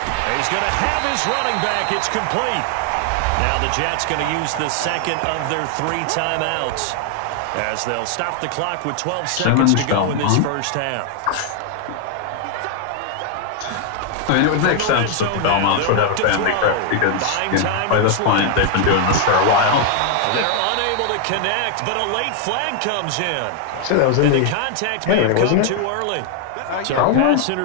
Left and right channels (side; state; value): both; different; correlation 0.00